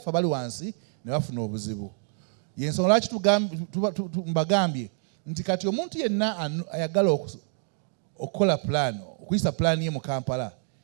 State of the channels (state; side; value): silent; left; 60 dB below the other